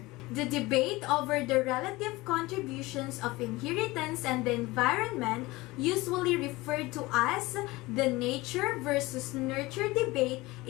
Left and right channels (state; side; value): quieter; right; 20.9 dB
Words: The debate over the relative contributions of inheritance and the environment, usually referred to as the nature versus nurture debate,